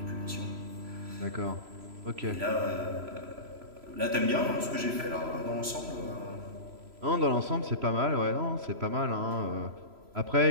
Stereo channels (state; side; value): late; left; 3.0 ms